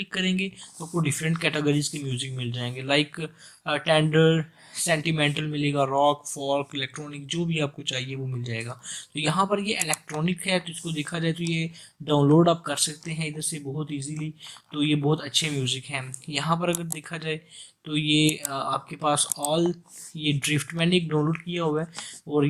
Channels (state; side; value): identical; both; correlation 1.00